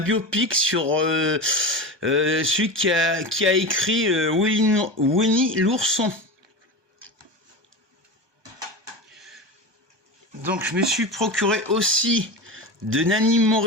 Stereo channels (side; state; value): left; late; 1.2 ms